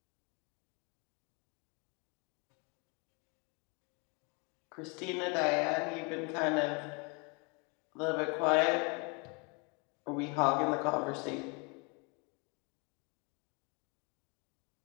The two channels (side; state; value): right; quieter; 31.9 dB